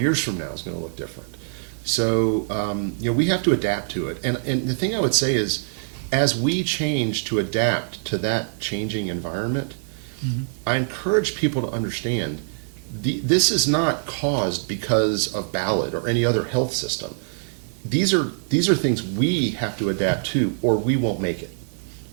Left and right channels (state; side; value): silent; left; digital silence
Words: from now is going to look different. So we have to adapt to it. And the thing I would say is, as we change to adapt to that changing environment, I encourage people to understand this is not caused because of Ballad or any other health system. These are things we have to adapt to, or we won't make it.